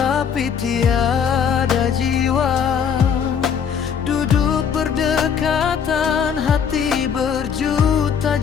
tiada jiwa. Duduk berdekatan, hati berjuta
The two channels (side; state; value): right; quieter; 7.3 dB